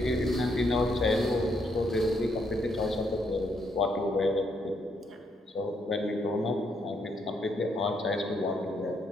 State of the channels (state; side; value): normal; both; correlation 0.75